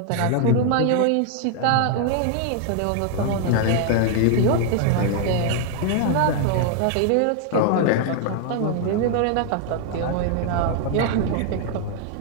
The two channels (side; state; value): both; different; correlation 0.00